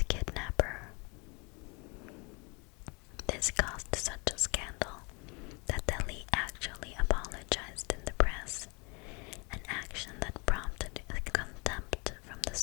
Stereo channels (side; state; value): right; quieter; 30.5 dB